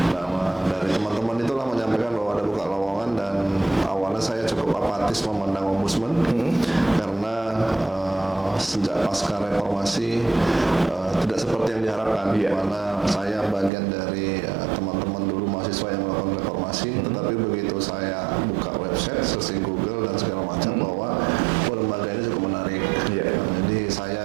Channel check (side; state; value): left; drops out; at 13.7 s